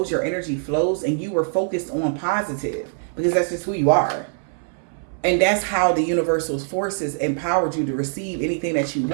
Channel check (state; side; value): silent; left; 60 dB below the other